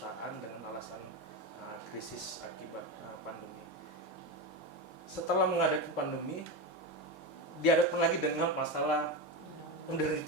dengan alasan krisis akibat pandemi. Setelah menghadapi pandemi, dihadapkan lagi dengan masalah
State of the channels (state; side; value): normal; both; correlation 0.17